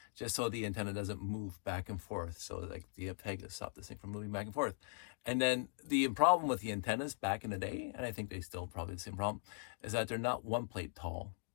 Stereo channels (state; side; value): silent; right; digital silence